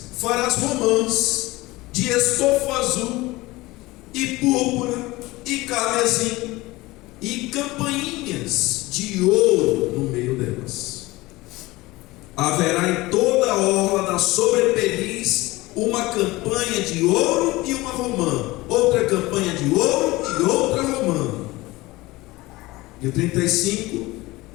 farás romãs de estofo azul e púrpura e carmesim e campainhas de ouro no meio delas. Haverá em toda a orla da sobrepeliz uma campanha de ouro e uma romã, outra campanha de ouro e outra romã. E o 35,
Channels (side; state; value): right; quieter; 20.4 dB